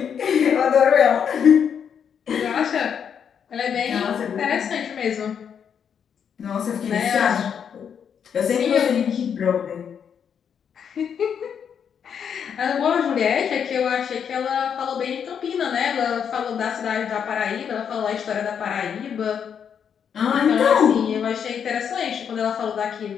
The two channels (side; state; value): right; quieter; 7.7 dB